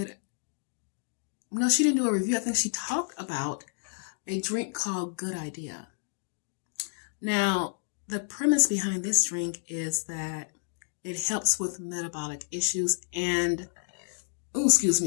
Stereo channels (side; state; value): right; silent; digital silence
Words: didn't do a review. I think she talked about a drink called Good Idea. Now, the premise behind this drink is that it helps with metabolic issues and,